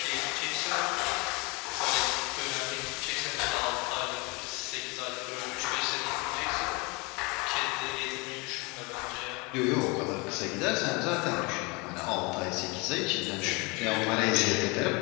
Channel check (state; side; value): quieter; right; 28.0 dB